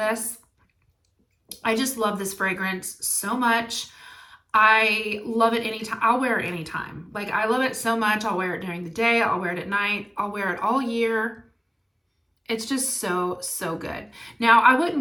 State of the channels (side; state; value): both; identical; correlation 1.00